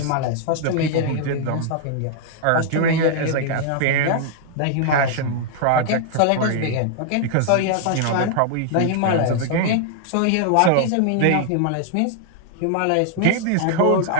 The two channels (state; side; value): different; both; correlation -0.01